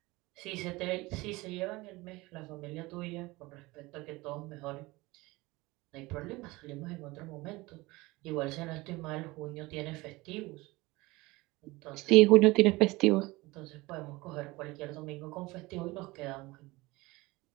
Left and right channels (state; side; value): quieter; left; 21.6 dB